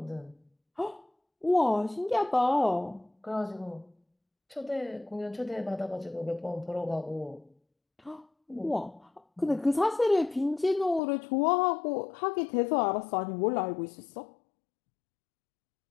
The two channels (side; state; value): right; drops out; at 11.0 s